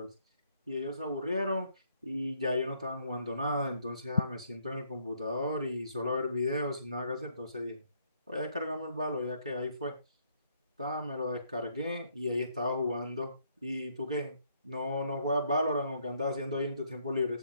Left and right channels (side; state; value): both; inverted; correlation -0.69